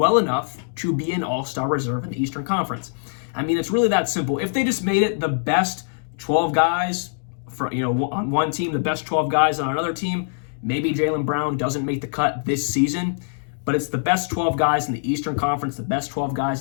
enough to be an all-star reserve in the Eastern Conference. It's really that simple. If they just made it the best 12 guys on one team, the best 12 guys on another team, maybe Jaylen Brown doesn't make the cut this season, but it's the best 12 guys in the Eastern Conference, the best 12 guys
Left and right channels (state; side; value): silent; right; digital silence